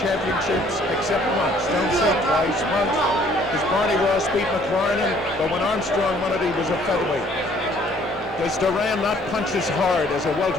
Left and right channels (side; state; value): both; normal; correlation 0.60